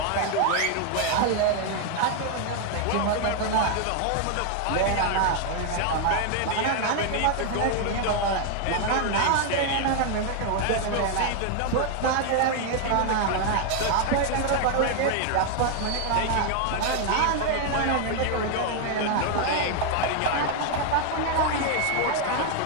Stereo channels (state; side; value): different; both; correlation 0.00